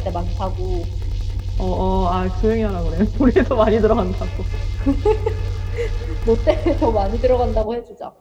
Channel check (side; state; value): both; identical; correlation 1.00